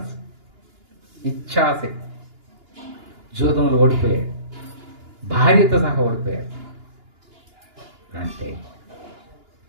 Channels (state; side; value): late; left; 2.9 ms